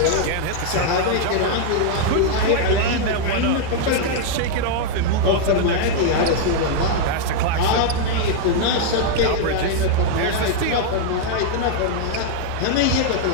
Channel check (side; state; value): both; different; correlation -0.01